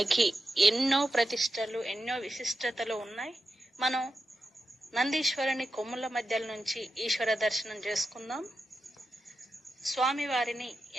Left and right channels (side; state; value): both; normal; correlation 0.89